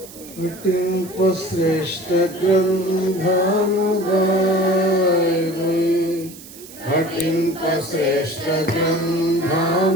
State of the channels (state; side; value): noise; right; hiss, 18 dB below the sound